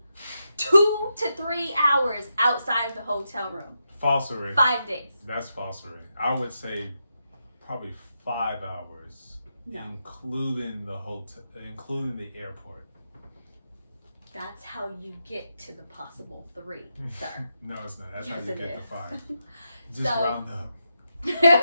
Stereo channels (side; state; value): both; inverted; correlation -0.85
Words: 2 to 3 hours outside of the hotel room. Falsery. 5 days. That's falsery. I would say probably 5 hours No. including the hotel, including the airport. That's how you get to the possible 3, sir. No, it's not. That's Yes, how you it get to is. 5. Just So- round up.